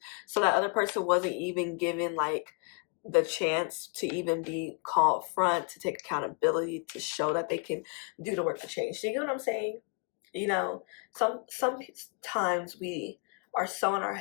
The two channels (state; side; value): quieter; right; 37.5 dB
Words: so that other person wasn't even given like the chance to even be called front, to take accountability, to show that they can do the work to change. So you get what I'm saying? You know, sometimes we are so in our